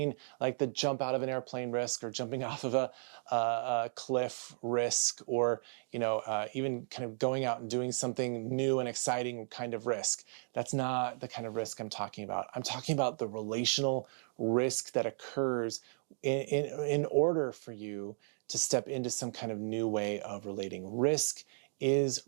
like the jump out of an airplane risk or jumping off of a cliff risk, or even kind of going out and doing something new and exciting kind of risk. That's not the kind of risk I'm talking about. I'm talking about the relational risk that occurs in order for you to step into some kind of new way of relating. Risk is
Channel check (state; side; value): silent; left; digital silence